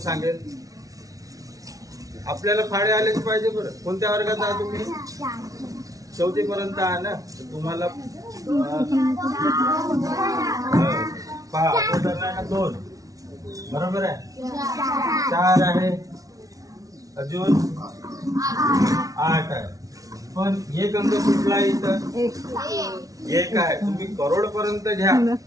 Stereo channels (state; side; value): late; left; 0.17 ms